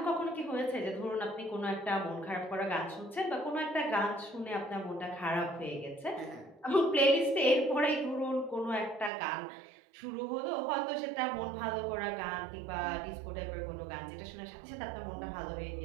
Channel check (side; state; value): left; drops out; at 9.1 s